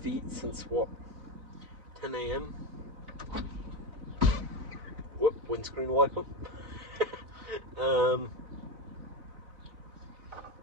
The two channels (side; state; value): left; late; 4.0 ms